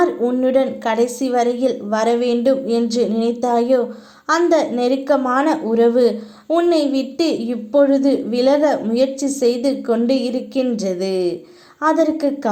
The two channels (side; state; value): both; identical; correlation 1.00